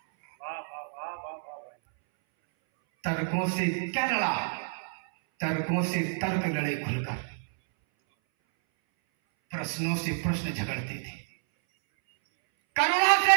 तर्कों से क्या लड़ा, तर्कों से तर्क लड़े खुलकर, प्रश्नों से प्रश्न झगड़ते थे, करुणा से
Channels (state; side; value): silent; left; 59 dB below the other